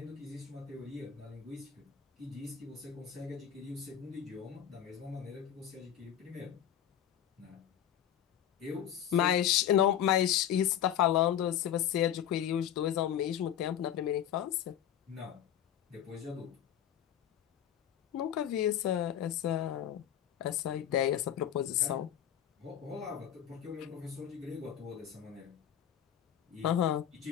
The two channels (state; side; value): quieter; right; 10.2 dB